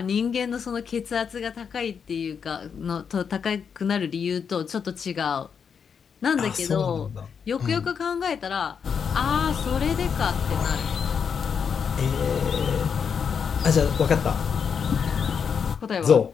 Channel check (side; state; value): right; quieter; 6.7 dB